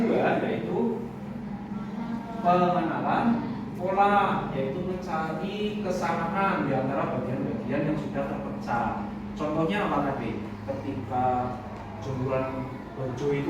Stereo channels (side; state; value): both; identical; correlation 1.00